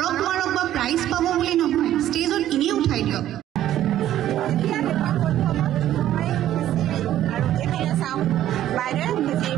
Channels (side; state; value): left; quieter; 12.4 dB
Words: মাৰক বা প্ৰাইজ পাব বুলি নহয় ষ্টেজত এনেই উঠাই দিয়ক